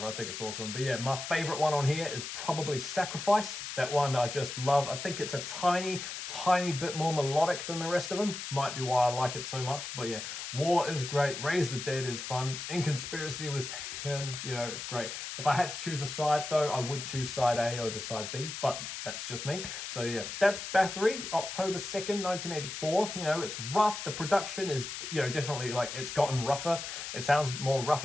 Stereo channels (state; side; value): noise; left; hiss, 7 dB below the sound